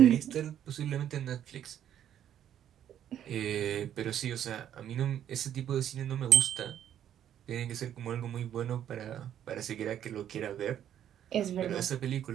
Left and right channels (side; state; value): left; quieter; 10.4 dB